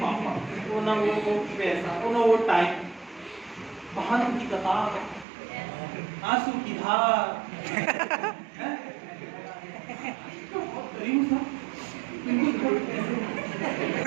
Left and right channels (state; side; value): drops out; left; at 5.2 s